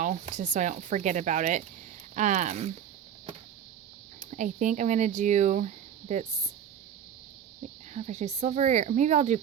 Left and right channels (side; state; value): left; quieter; 9.0 dB